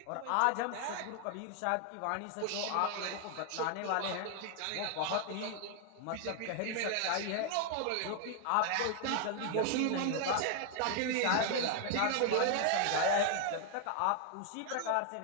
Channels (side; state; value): both; different; correlation 0.00